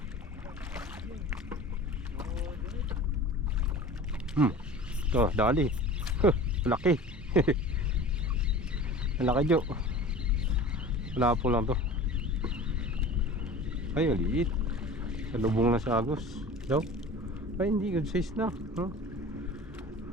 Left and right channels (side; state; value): both; normal; correlation 0.39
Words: To, dali. Laki. Laki Jo. Wala po lang to. Ay, maliit. Salubong na sa agos. Daw. Ay, hindi. Good size na. Huh?